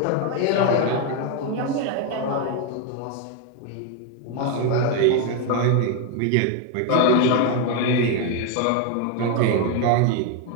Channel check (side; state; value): both; different; correlation 0.01